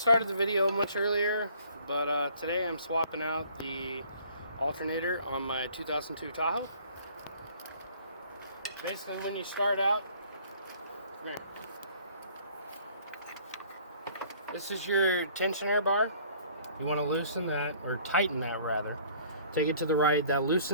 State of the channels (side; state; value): both; inverted; correlation -0.56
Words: the video much earlier, but today I'm swapping out the alternator on my 2002 Tahoe. Basically, when you start out, come here. This is your tensioner bar. You want to loosen that, or tighten that rather. Take it to the right. That